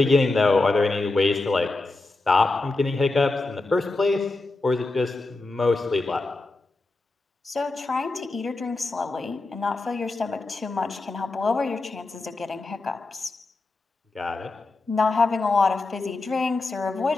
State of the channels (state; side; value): quieter; right; 3.3 dB